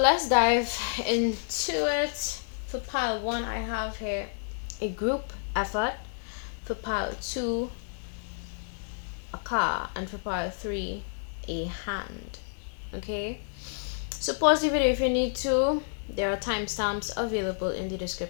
dive into it. For pile 1, I have here a group effort. For pile 2, a car. And for pile 3, a hand. Okay? So pause the video if you need to. There are timestamps available in the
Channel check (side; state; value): right; silent; digital silence